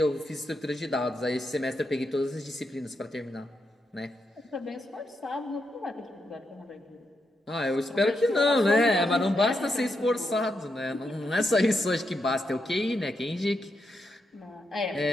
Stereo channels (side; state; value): both; normal; correlation 0.83